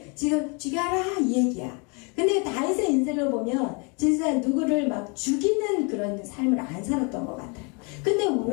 지금 죽여라 이 얘기야. 근데 다윗의 인생을 보면 진짜 누구를 막 죽이는 그런 삶을 안 살았던 것 같아요. 근데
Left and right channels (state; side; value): quieter; right; 33.2 dB